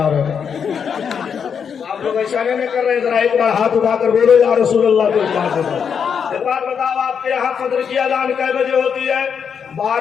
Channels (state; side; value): quieter; right; 7.0 dB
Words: रहे हैं। आप लोग ऐसा नहीं कर रहे हैं? जरा एक बार हाथ उठाकर बोलो या रसूल अल्लाह को एक बात बताओ, आपके यहाँ फजर की अजान कै बजे होती है?